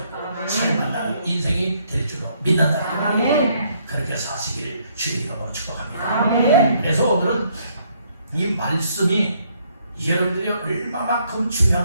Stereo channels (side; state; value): both; inverted; correlation -0.69